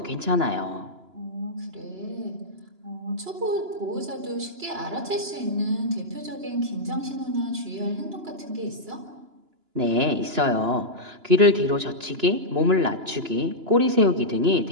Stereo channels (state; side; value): late; left; 2.9 ms